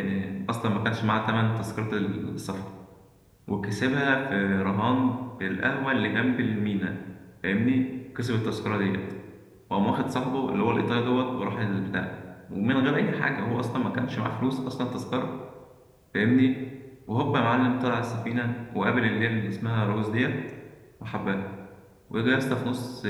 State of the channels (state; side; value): identical; both; correlation 1.00